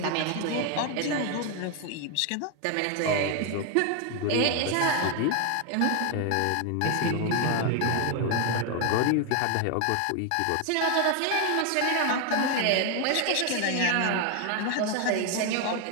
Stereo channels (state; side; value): different; both; correlation 0.01